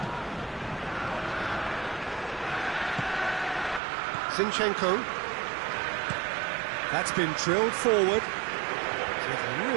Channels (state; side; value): drops out; left; at 3.8 s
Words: Zinchenko. That's been drilled forward. Did